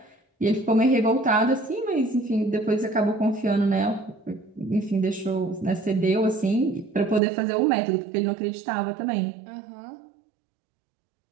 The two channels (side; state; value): left; drops out; at 7.2 s